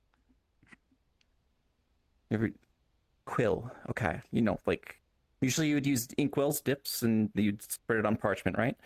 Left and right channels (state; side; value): identical; both; correlation 1.00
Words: Every quill, okay. Like usually you would use inkwells, dips, and you'd spread it on parchment, right?